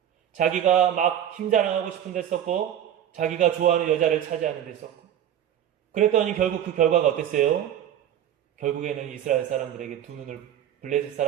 자기가 막 힘자랑하고 싶은 데 썼고 자기가 좋아하는 여자를 차지하는 데 썼고 그랬더니 결국 그 결과가 어땠어요? 결국에는 이스라엘 사람들에게 블레셋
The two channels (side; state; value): left; quieter; 10.5 dB